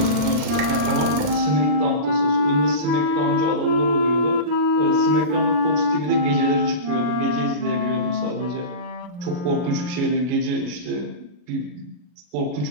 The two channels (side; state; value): left; late; 40 ms